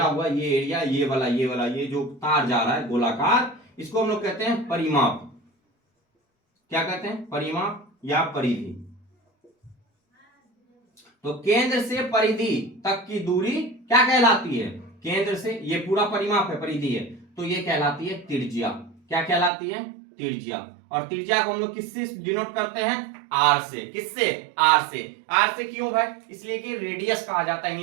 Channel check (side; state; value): left; drops out; at 19.5 s